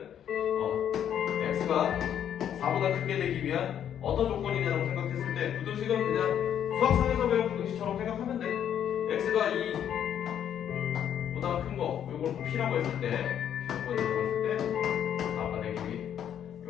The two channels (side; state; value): right; quieter; 9.6 dB